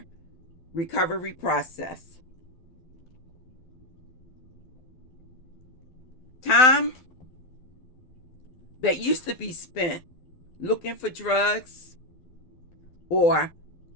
recovery process. Time that used to be spent looking for drugs or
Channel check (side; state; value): right; late; 12 ms